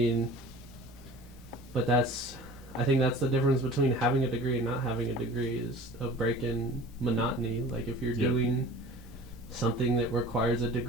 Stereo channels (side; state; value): both; normal; correlation 0.42